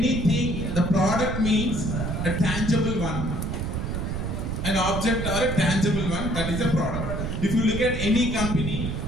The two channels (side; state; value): right; noise; rumble, 3 dB below the sound